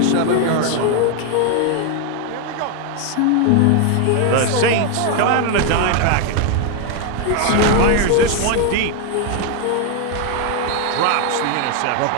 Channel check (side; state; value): both; different; correlation 0.01